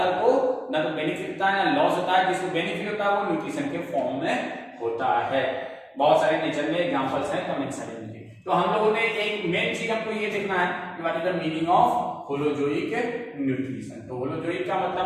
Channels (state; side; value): identical; both; correlation 1.00